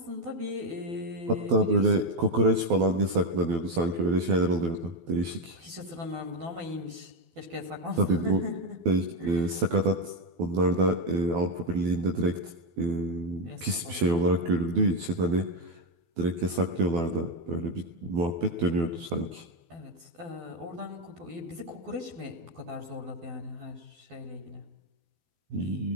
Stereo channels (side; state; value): left; late; 12 ms